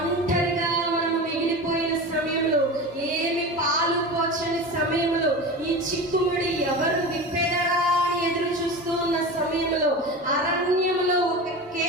మనం మిగిలిపోయిన సమయంలో, ఏమి పాలు పోచని సమయంలో, ఈ చిక్కుముడి ఎవరు విప్పెదరా అని ఎదురు చూస్తూ ఉన్న సమయంలో, అరణ్యంలో ఒక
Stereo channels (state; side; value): normal; both; correlation 0.29